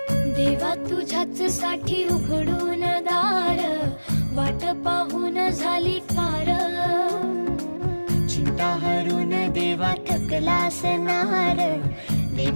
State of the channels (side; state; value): both; inverted; correlation -1.00